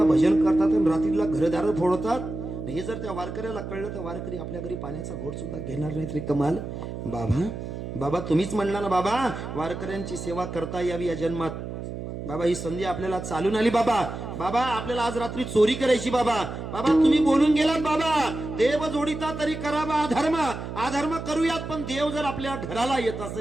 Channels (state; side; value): noise; right; hum, 7 dB below the sound